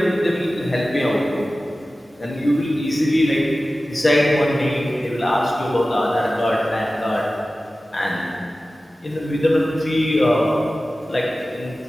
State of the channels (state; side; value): normal; both; correlation 0.95